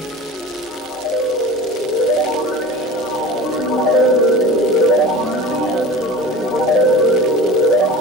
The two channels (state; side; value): normal; both; correlation 0.37